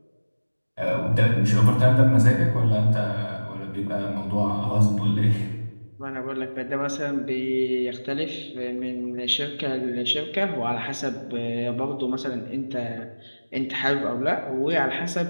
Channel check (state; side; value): inverted; both; correlation -1.00